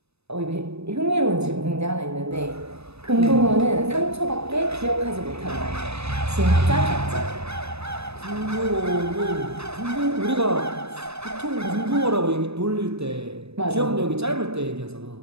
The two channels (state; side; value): late; left; 0.79 ms